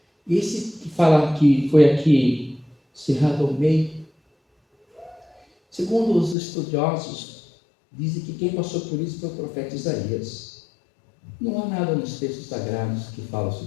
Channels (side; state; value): right; drops out; at 6.4 s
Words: Esse que fala que foi aqui cerrado ao meio, segundo os estudiosos, dizem que quem passou por isso foi o profeta Isaías. Não há nada nos textos sagrados que fala